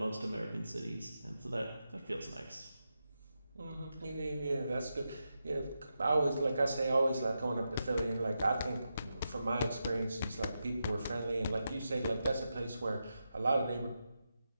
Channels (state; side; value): inverted; both; correlation -0.88